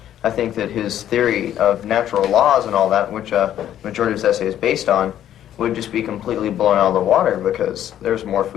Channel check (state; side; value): quieter; right; 11.2 dB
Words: I think that his theory of natural laws and all that, which majority of his essay is based on, would just be completely blown out of the water because there's more